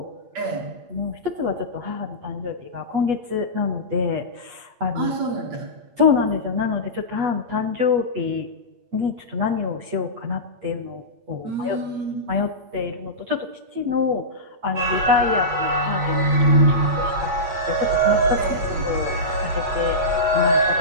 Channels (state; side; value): late; left; 8.3 ms